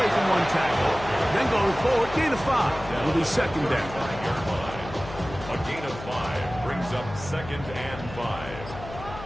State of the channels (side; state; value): left; noise; hum, 13 dB below the sound